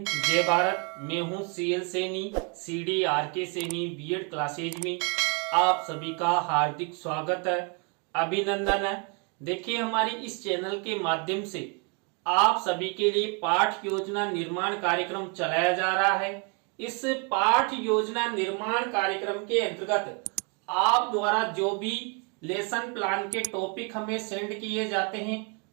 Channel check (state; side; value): quieter; left; 34.1 dB